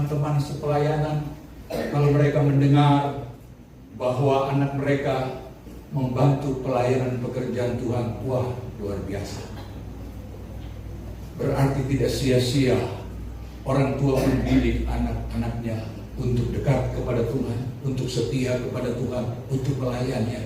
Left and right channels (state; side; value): identical; both; correlation 1.00